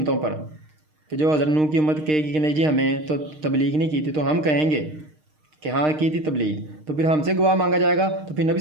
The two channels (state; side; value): late; left; 6.5 ms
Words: पर। कि जो हज़रत नूह की उम्मत कहेगी कि नहीं जी हमें तो तबलीग नहीं की थी, तो हम कहेंगे कि हाँ की थी तबलीग, तो फिर हमसे गवाह मांगा जाएगा, तो फिर नबी